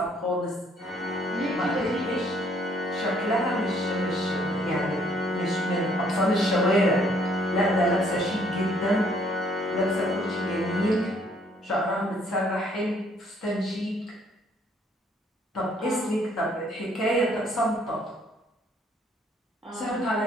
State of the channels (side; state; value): both; normal; correlation 0.64